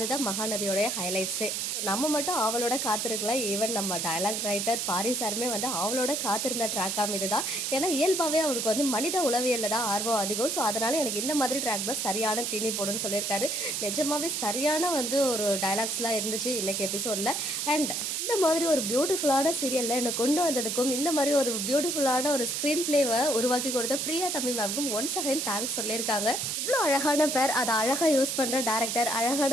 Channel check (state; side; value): noise; right; hiss, 1 dB below the sound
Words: மகாநதியோடைய ஹைலைட்ஸே. நம்ம மட்டும் அவளோட காத்திருக்கலாம். ஈவன் நம்ம டயலாக் ரைட்டர் பாரி சாருமே வந்து அவளோட காத்திருந்த ட்ராக்காக இதுதான். ஏன்னா இயல்பாகவே அவருக்கு வந்து மனித உளவியலில் தான் ஆர்வம் அதிகம். ஸோ அதனால எனக்கு இந்த மாதிரி ட்ராக் தான் சரியான தீனி போடுன்னு சொல்லியிருக்காரு. நிஜமாவே சரியான வந்து ஒரு டயலாக்ஸ்லாம் இருந்துச்சு இன்னைக்கு எபிசோடில். அண்ட் இந்த மாதிரி ஒரு பியூட்டிஃபுல்லான சீரியலில் என்னை கொண்டு வந்ததுக்கும் இந்த மாதிரி ஒரு பியூட்டிஃபுல்லான ஒரு ஸ்க்ரீன் பிளேவை உருவாக்கி கொடுத்த பிரியா தம்பி மேம்க்கும் ஒன்ஸ் அகைன் தேங்க்ஸ் சொல்லியிருக்காங்க. இவ்வளோ அழகான பேர், அதை அழகாக யூஸ் பண்ணுற டேரக்டர்,